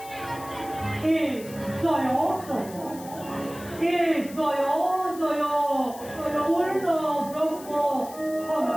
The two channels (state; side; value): noise; left; hiss, 17 dB below the sound